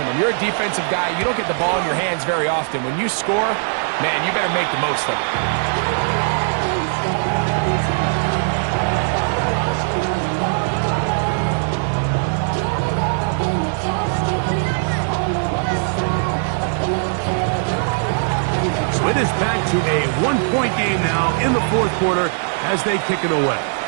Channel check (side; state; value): left; silent; digital silence